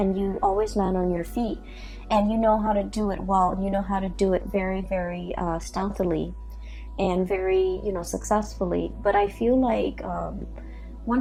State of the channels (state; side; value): identical; both; correlation 1.00